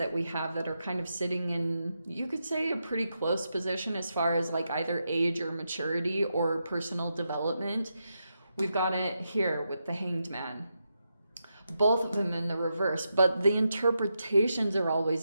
we have that are kind of sitting in, you could say, a pretty close position as far as like either age or maturity or personal development, we've got it here with the Hanged Man. Both of them in the reverse, but the interpretations are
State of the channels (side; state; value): both; inverted; correlation -0.85